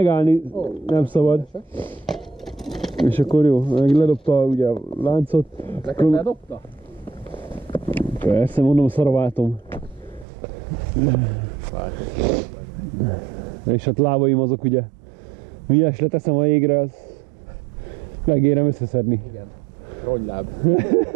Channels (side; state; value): left; drops out; at 10.2 s